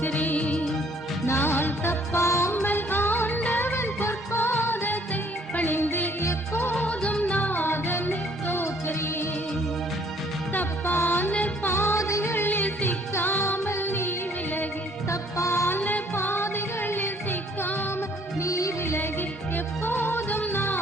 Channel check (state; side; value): normal; both; correlation 0.60